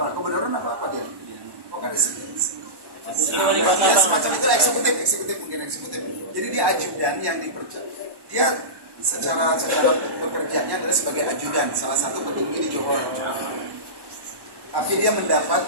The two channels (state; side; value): late; left; 1.1 ms